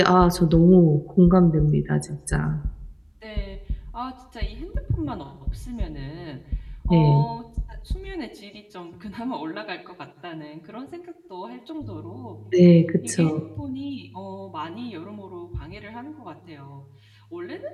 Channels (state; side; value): identical; both; correlation 1.00